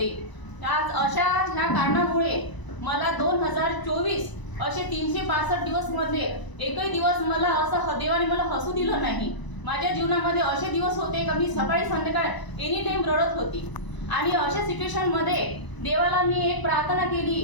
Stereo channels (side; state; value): right; late; 1.0 ms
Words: आज अशा ह्या कारणामुळे मला 2024 असे 365 दिवस मध्ये एकही दिवस मला असं देवाने मला हसू दिलं नाही। माझ्या जीवनामध्ये असे दिवस होते का मी सकाळी संध्याकाळ एनी टाइम रडत होती आणि अशा सिच्युएशन मध्ये देवाला मी एक प्रार्थना केली,